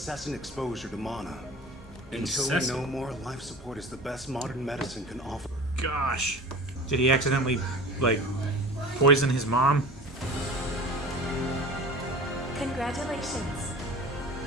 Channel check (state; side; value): normal; both; correlation 0.38